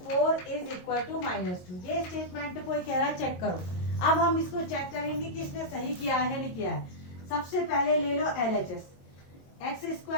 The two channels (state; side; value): late; right; 22 ms